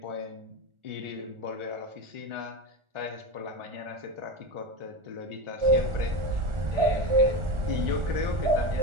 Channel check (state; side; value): late; left; 1.4 ms